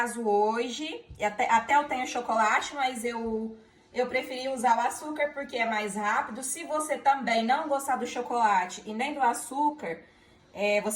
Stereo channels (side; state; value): both; identical; correlation 1.00